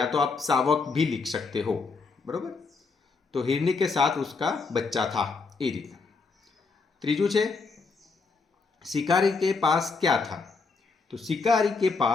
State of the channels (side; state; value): right; quieter; 4.4 dB